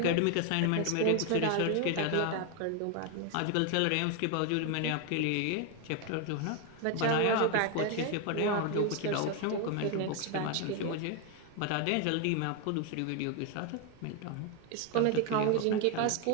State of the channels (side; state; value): both; different; correlation 0.01